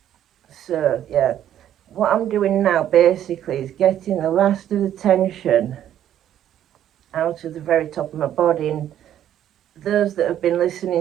So, yeah. What I'm doing now, basically, is getting the last of the tension out of the very top of my body. And those that have been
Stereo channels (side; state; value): left; quieter; 11.0 dB